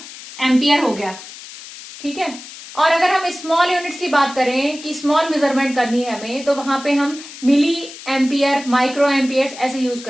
एम्पियर हो गया, ठीक है। और अगर हम स्मॉल यूनिट्स की बात करें कि स्मॉल मेजरमेंट करनी है हमें, तो वहां पे हम मिली एम्पियर, माइक्रो एम्पियर्स ऐसे यूज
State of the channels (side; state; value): left; noise; hiss, 15 dB below the sound